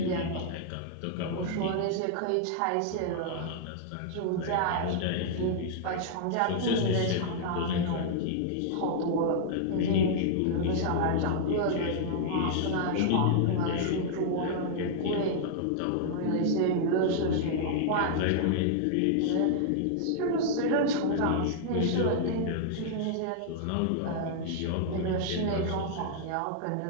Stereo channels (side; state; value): both; different; correlation -0.01